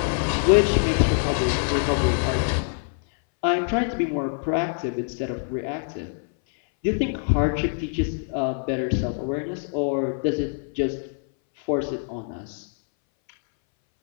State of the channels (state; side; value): silent; right; 61 dB below the other